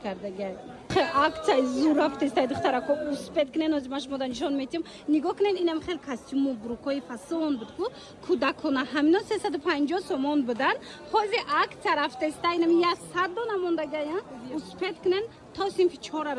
کرده گه акция زور رفته است دخترها کو اسپید کنن از ماش مدن نشون میتیم نگاه کنین اینم خیلی کاستوم و بروکای فاسون بود کو کودکانه همینا 350 سومون بودن حاضر акция رفته است اینم 100 دو نمونده گه اسپید کنن تا سینفی 4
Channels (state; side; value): identical; both; correlation 1.00